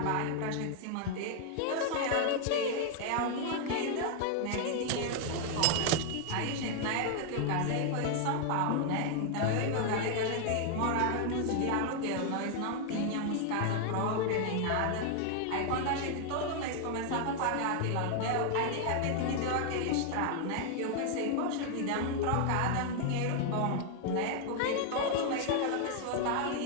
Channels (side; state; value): both; different; correlation 0.00